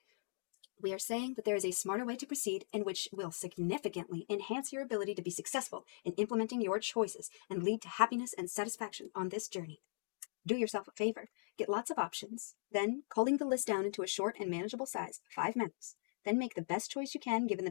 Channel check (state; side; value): silent; right; digital silence